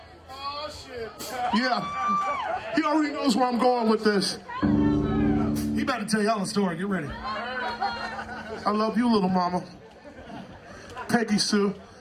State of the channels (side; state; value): both; identical; correlation 1.00